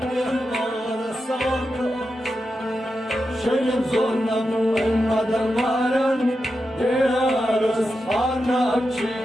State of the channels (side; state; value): both; normal; correlation 0.89